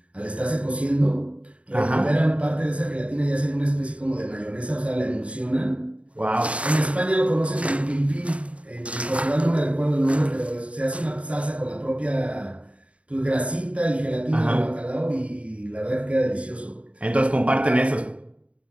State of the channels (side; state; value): left; late; 0.063 ms